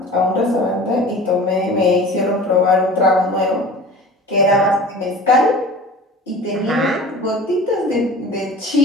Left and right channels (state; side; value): normal; both; correlation 0.40